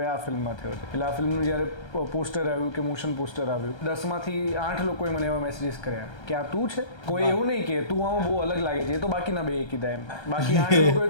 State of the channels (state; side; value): late; right; 1.3 ms